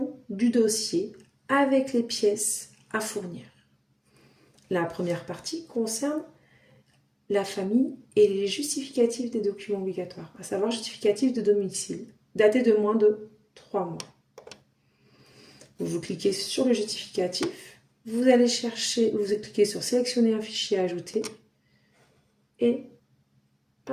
du dossier avec les pièces à fournir. La première partie concerne la famille et les justificatifs des documents obligatoires, à savoir justificatif de domicile, daté de moins de 3 mois. Vous cliquez sur le justificatif, vous allez chercher, vous cliquez sur sélectionner un fichier à ajouter et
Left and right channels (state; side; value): identical; both; correlation 1.00